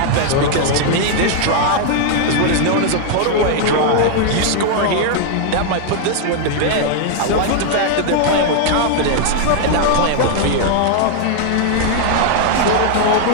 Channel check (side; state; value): both; different; correlation -0.01